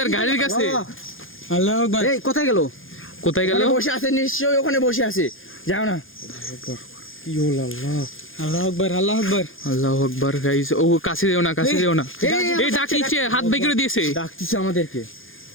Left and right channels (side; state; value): right; late; 0.59 ms